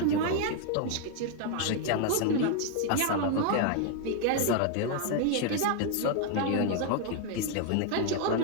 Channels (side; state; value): both; different; correlation 0.00